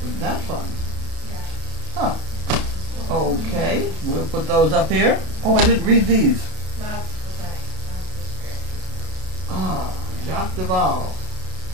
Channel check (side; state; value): left; late; 33 ms